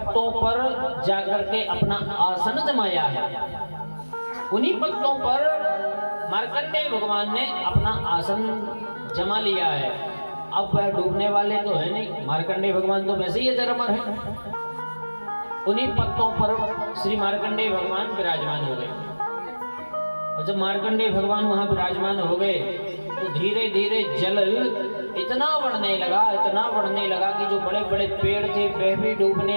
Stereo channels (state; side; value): inverted; both; correlation -1.00